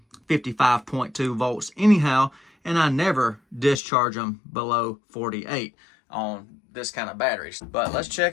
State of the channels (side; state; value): right; drops out; at 3.8 s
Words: 55.2 volts anyhow, and I never discharge them below 48 on this kind of batteries. But let's